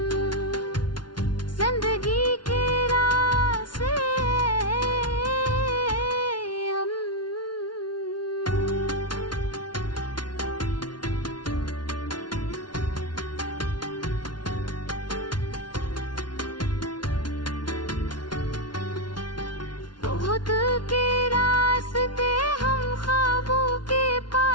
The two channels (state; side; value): late; right; 0.70 ms